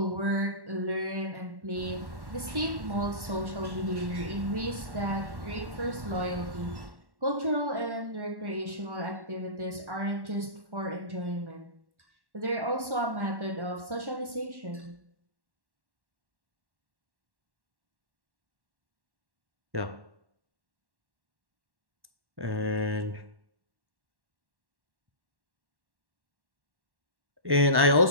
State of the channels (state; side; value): late; left; 1.1 ms